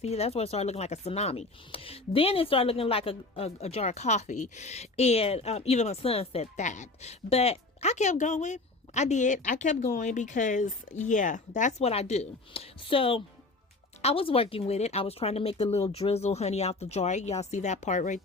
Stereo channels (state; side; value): quieter; right; 3.2 dB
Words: that's where it started looking like a tsunami. Then it started looking like a jar of coffee, and even my son said that. But I kept going. I kept going because, yeah, that's what I do. So I was working with it. I was trying to make the little drizzle honey out the jar. Y'all see that part right